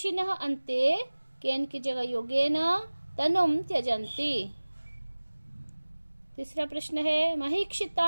अन्ते केन की जगह योगेन तनुम त्यजन्ति। तीसरा प्रश्न है,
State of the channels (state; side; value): inverted; both; correlation -1.00